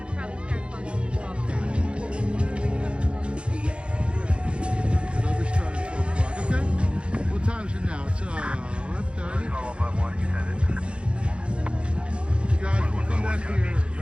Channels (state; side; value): late; left; 0.057 ms